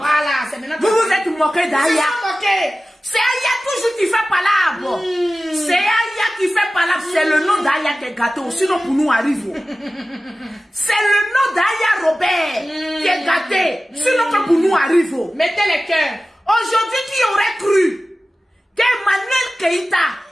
c'est maintenant. Vous vous êtes moqués d'Aya. moqué. C'est Aya toujours qui fait palabre. C'est Aya qui fait palabre. C'est le nom d'Aya qui est gâté. Sinon, pour nous, arrive. C'est le nom d'Aya Robert qui est gâté. Sinon, que pour nous, arrive. Mettez les cœurs. Aujourd'hui, qui aurait cru qu'Emmanuel Keïta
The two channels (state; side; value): normal; both; correlation 0.96